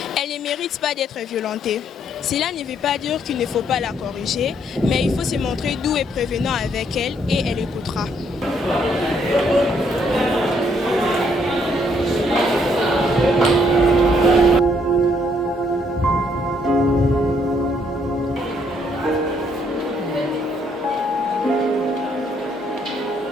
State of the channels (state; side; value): normal; both; correlation 0.69